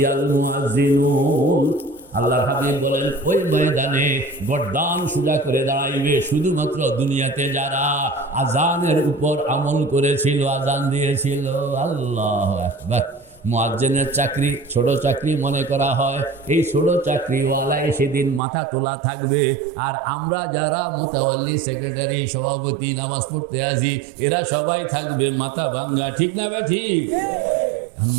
আল মুয়াজ্জিনুন। আল্লাহর হাবিব বলেন ওই ময়দানে গর্দান সোজা করে দাঁড়াইবে শুধুমাত্র দুনিয়াতে যারা আযানের উপর আমল করেছিল, আযান দিয়েছিল। আল্লাহু আকবার। মুয়াজ্জিনের চাকরি ছোট চাকরি মনে করা হয়, এই ছোট চাকরিওয়ালায় সেদিন মাথা তোলা থাকবে। আর আমরা যারা মুতাওয়াল্লি, সেক্রেটারি, সভাপতি, নামাজ পড়তে আসি, এরা সবাই থাকবে মাথা ভাঙ্গা। ঠিক না বে? ঠিক।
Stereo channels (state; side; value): drops out; left; at 18.4 s